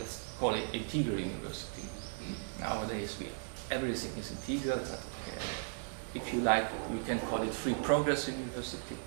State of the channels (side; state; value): left; silent; 53 dB below the other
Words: call it integral university. Nowadays, everything is integral, but if you like, we can call it free progress university.